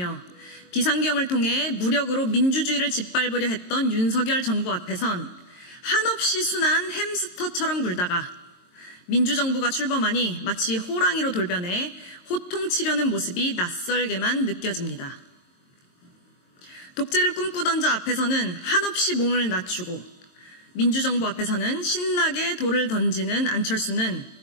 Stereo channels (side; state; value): right; late; 22 ms